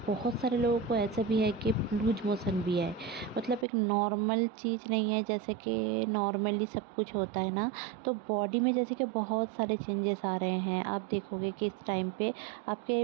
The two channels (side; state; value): left; drops out; at 3.7 s